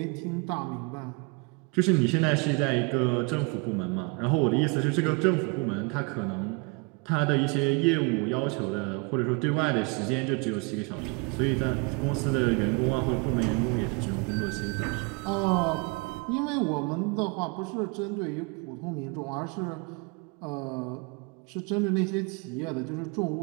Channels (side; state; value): left; quieter; 30.9 dB